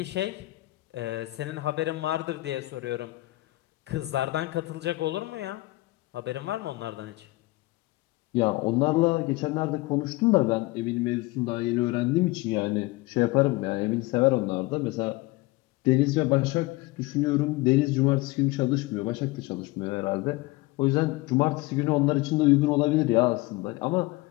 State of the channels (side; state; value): right; quieter; 20.8 dB